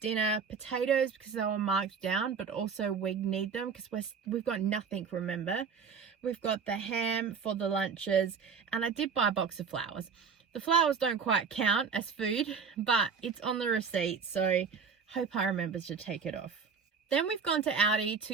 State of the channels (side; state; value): left; quieter; 5.9 dB